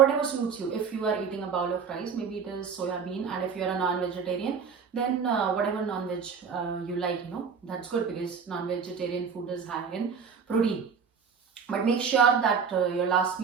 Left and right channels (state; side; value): quieter; left; 6.3 dB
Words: suits you. If you are eating a bowl of rice, maybe it is soya bean, and if you are a non-vegetarian, then whatever non-veg you like, that's good, because non-vegetarian food is high in protein. But make sure that your last